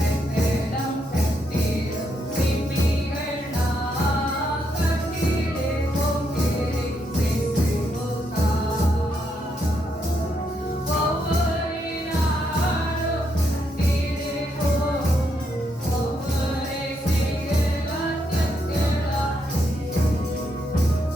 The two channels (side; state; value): both; normal; correlation 0.78